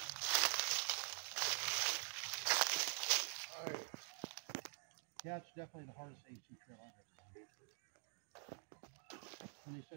Yeah, it's definitely the hardest A2 trail I've ever done. When they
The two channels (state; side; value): silent; left; digital silence